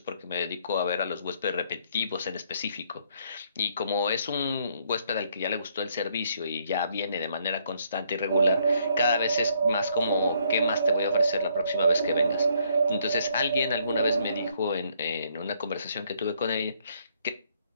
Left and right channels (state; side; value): inverted; both; correlation -0.68